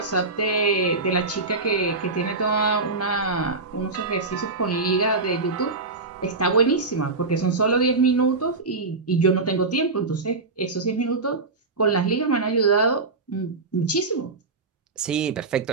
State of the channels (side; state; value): left; quieter; 3.7 dB